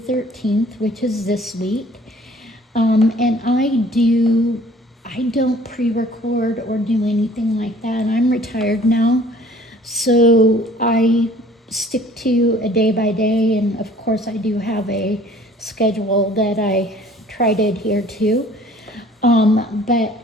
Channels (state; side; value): normal; both; correlation 0.53